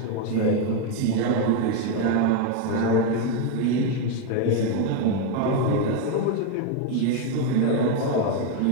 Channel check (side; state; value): both; different; correlation 0.02